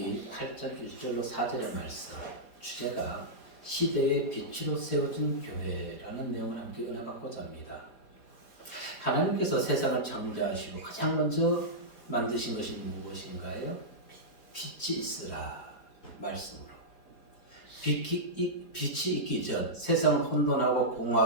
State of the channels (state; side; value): late; right; 4.6 ms